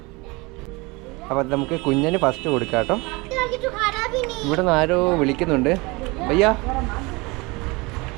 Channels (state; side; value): quieter; left; 25.4 dB